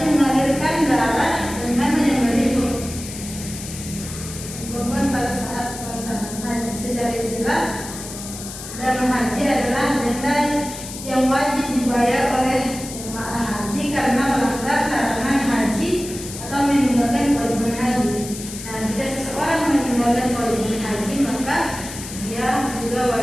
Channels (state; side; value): noise; left; hiss, 11 dB below the sound